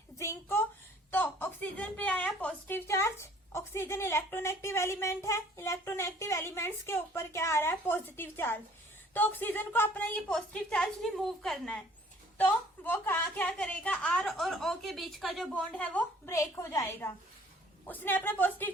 जिंक को। तो ऑक्सीजन पे आया positive charge, oxygen electronegative element है, इलेक्ट्रोनेगेटिव एलिमेंट्स के ऊपर क्या आ रहा है? Positive charge. तो ऑक्सीजन को अपना ये पॉजिटिव चार्ज रिमूव करना है, तो वो क्या करेगा? R और O के बीच का जो बॉन्ड है वो ब्रेक हो जाएगा। उसने अपना पॉजिटिव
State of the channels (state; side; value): normal; both; correlation 0.55